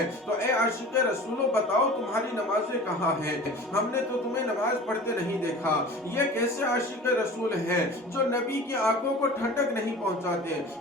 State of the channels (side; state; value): both; normal; correlation 0.39